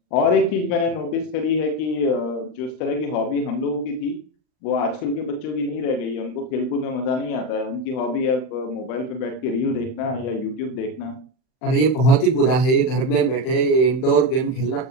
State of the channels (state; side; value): late; right; 39 ms